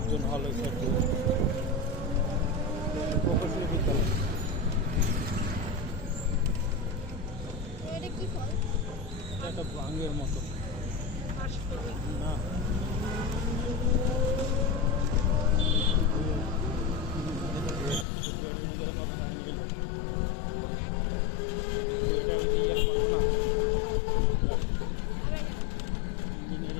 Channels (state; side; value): drops out; right; at 18.1 s